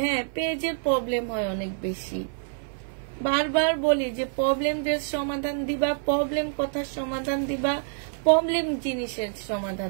পেজের প্রবলেম হয় অনেক বেশি। বারবার বলি যে প্রবলেম ড্রেস সমাধান দিবা, প্রবলেম কথার সমাধান দিবা, প্রবলেম জিনিসের সমাধান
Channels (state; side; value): silent; left; 57 dB below the other